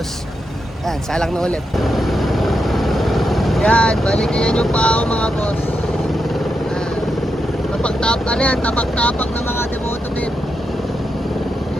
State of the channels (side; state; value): both; normal; correlation 0.85